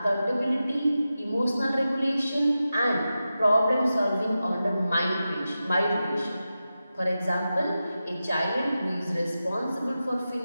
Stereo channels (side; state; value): both; inverted; correlation -0.92